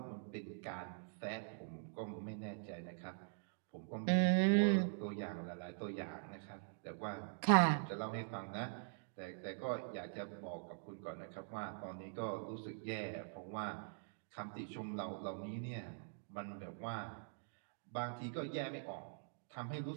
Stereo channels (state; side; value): silent; left; digital silence